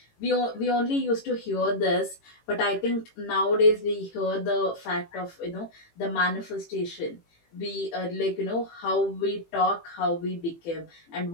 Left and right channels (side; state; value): right; late; 18 ms